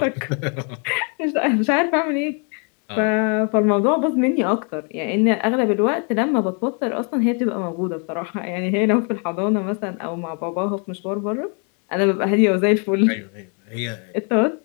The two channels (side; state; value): right; quieter; 38.6 dB